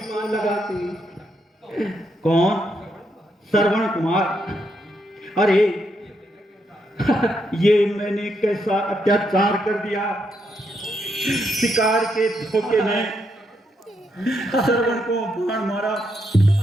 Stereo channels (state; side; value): normal; both; correlation 0.79